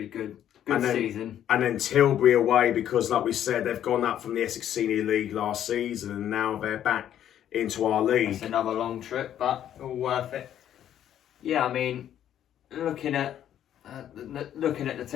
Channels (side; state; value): right; quieter; 10.7 dB